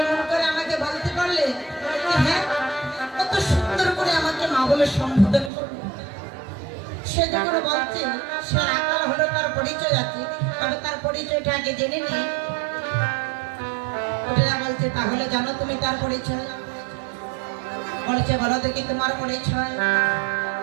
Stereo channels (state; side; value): drops out; left; at 5.5 s